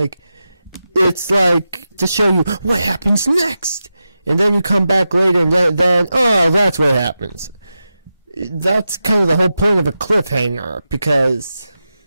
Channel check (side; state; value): both; inverted; correlation -0.91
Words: it's like to show you what happens next, and then you come back later and then oh, that's what happens. That's kind of the whole point of a cliffhanger, because